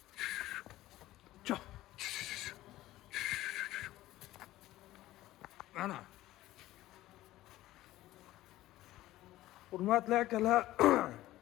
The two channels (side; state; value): right; quieter; 15.7 dB